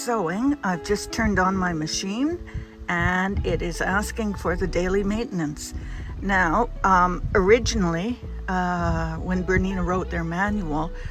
I've just turned on my machine and it is asking for the daily maintenance. Now, originally, when Bernina wrote their manual,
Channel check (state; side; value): identical; both; correlation 1.00